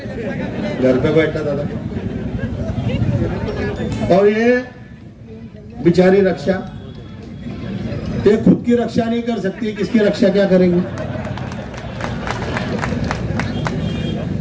घर पे बैठा दादा। और ये बिचारी रक्षा ये खुद की रक्षा नहीं कर सकती, किसकी रक्षा क्या करेंगे?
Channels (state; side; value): identical; both; correlation 1.00